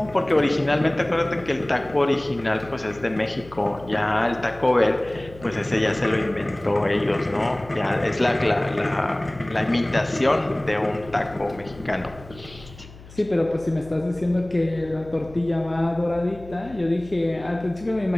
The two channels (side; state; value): left; noise; hum, 19 dB below the sound